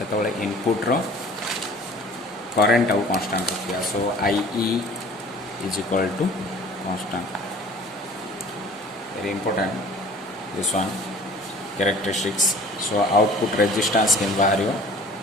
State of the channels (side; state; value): both; normal; correlation 0.48